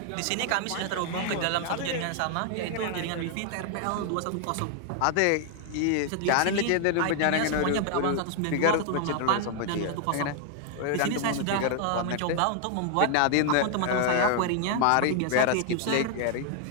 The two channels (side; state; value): both; different; correlation 0.00